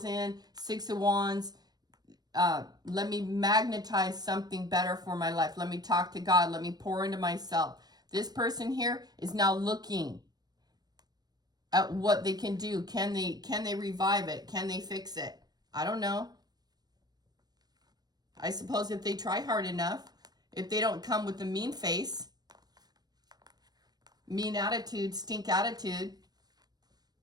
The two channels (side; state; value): left; late; 0.19 ms